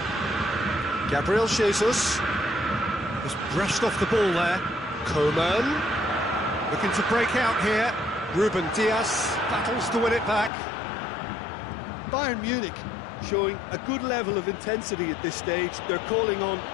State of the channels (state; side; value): drops out; right; at 10.5 s